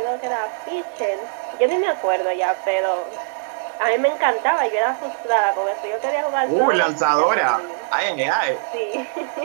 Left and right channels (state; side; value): silent; left; 58 dB below the other